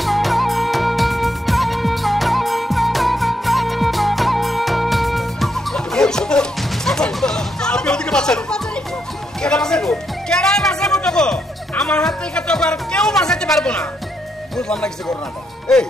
আপনি ওদিকে বাঁচান। আমার হাত থেকে তো কেউ বাঁচাতে পারবো না। বুঝলাম না কিছু ঘটনাটা। এই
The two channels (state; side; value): normal; both; correlation 0.78